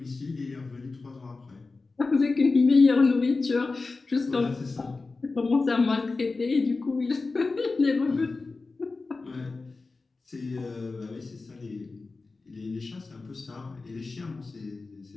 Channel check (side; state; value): right; quieter; 3.8 dB